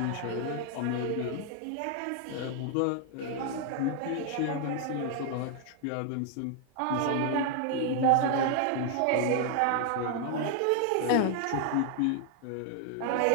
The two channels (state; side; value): different; both; correlation 0.00